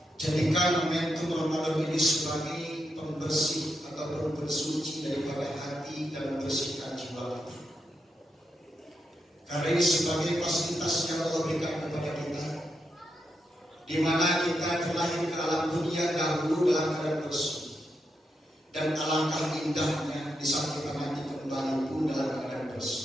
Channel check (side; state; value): both; normal; correlation 0.84